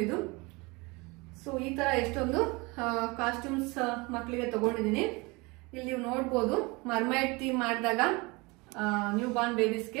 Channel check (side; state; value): left; quieter; 25.8 dB